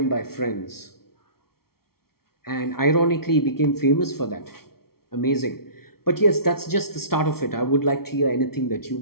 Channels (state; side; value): late; right; 0.94 ms